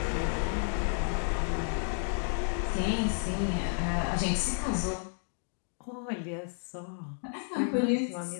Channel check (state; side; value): silent; right; 57 dB below the other